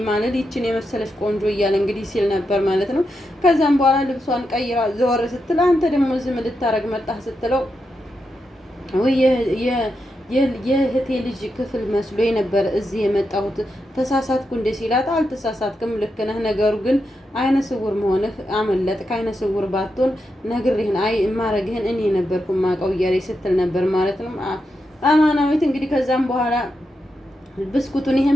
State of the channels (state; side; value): normal; both; correlation 0.86